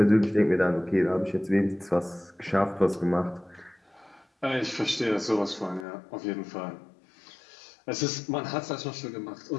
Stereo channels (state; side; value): drops out; right; at 5.9 s